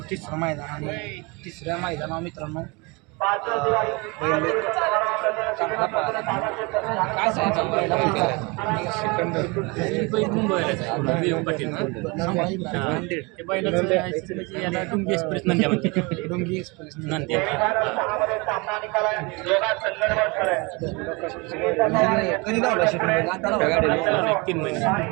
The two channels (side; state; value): left; quieter; 27.8 dB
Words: तिसरं मैदान आणि तिसऱ्या मैदानावर मित्रांनो चांगला पाहिला काय सांगायचं याला डुंगी एक्सप्रेस नंद्या म्हणते डोंगी एक्सप्रेस नंद्या कधी धावला शेकडे आता धावला 3 महिने